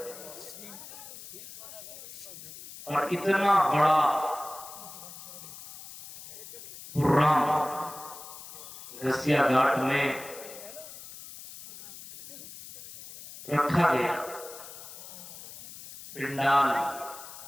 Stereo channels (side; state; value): left; noise; hiss, 14 dB below the sound